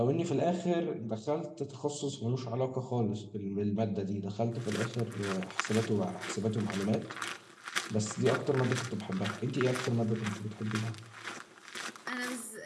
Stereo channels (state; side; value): identical; both; correlation 1.00